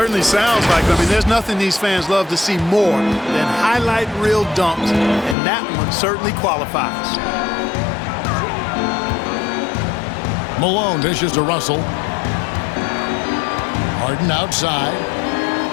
sounds like it. I mean, there's nothing these fans love to see more than highlight reel dunks, and that one certainly qualifies. Malone dishes to Russell. Harden outside.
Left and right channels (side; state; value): right; drops out; at 5.4 s